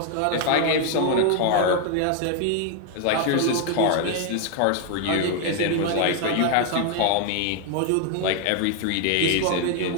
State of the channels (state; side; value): different; both; correlation 0.01